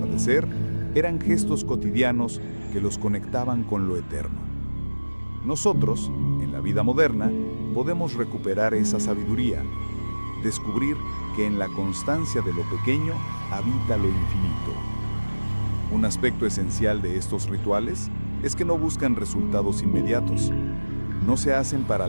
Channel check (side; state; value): both; inverted; correlation -1.00